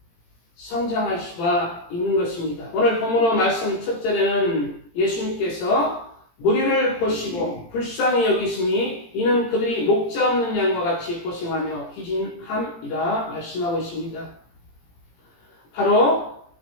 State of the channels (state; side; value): late; right; 18 ms